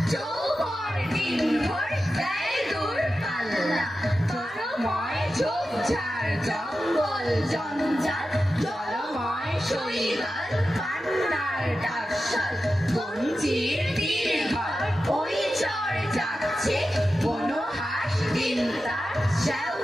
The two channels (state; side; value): normal; both; correlation 0.92